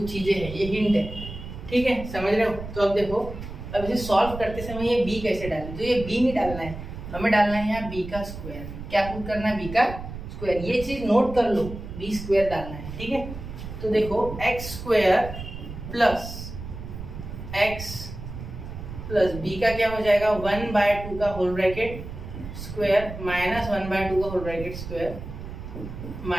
चीजें हैं, ये हिंट है। ठीक है, समझ रहे हो? तो अब देखो, अब इसे सॉल्व करते समय ये b कैसे डालें, तो ये b नहीं डालना है, हमें डालना है यहाँ b का स्क्वायर। क्या पुट करना है, b का स्क्वायर। ये चीज नोट कर लो, b² डालना है। ठीक है, तो देखो x² + x + b का क्या हो जाएगा, 1/2 का होल ब्रैकेट स्क्वायर - 1/2 का होल ब्रैकेट स्क्वायर -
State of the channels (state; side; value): noise; right; rumble, 10 dB below the sound